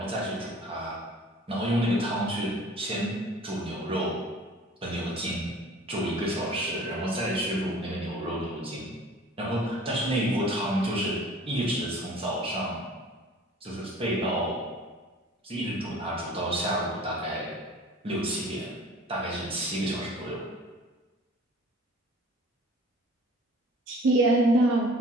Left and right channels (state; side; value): normal; both; correlation 0.47